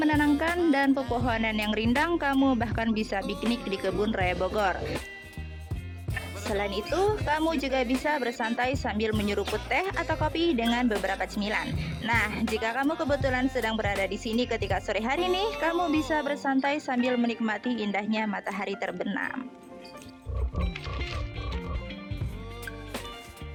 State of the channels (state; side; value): identical; both; correlation 1.00